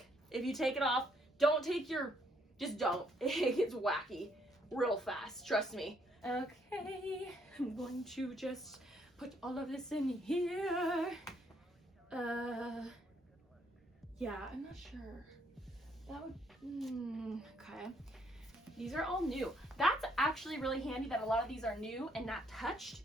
If you take it off, don't take your, just don't. It gets wacky real fast, trust me. Okay, I'm going to just put all of this in here. Yeah, I'm not sure. That would, okay. These are all new. That's actually really handy that a lot of these are new and not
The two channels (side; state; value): both; normal; correlation 0.70